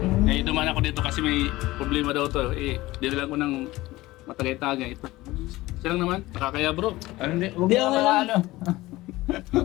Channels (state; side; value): quieter; right; 18.5 dB